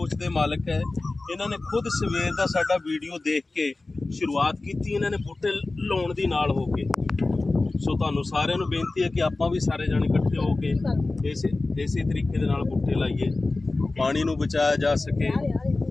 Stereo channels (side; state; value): right; quieter; 3.3 dB